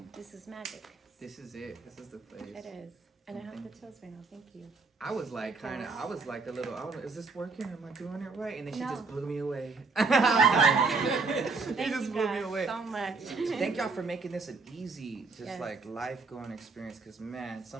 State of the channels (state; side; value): quieter; left; 4.2 dB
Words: This is magic. This is it. This is the place. It is, and I have the chills right now. Thank you. I was like a little, I don't know, is this working? Am I doing it right? And then she No. just blew me away. Thank just you blew me guys away. so much. Thank y'all for making this an easy, just Yes. like life going experience. Cause man,